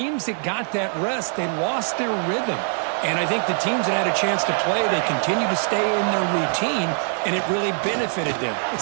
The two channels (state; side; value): silent; left; 57 dB below the other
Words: that got that rest, they lost their rhythm. And I think the teams that had a chance to play, they continue to stay in their routine, and it really benefited them.